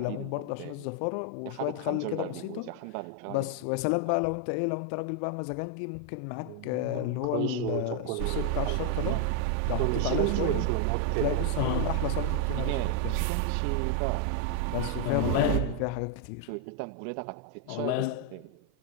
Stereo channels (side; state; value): both; different; correlation 0.00